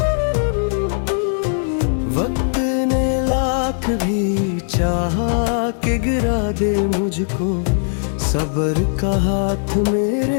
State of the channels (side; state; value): right; silent; digital silence